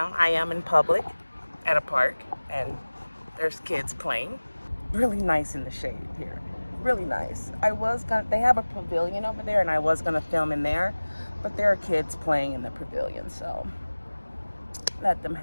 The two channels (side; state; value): both; inverted; correlation -1.00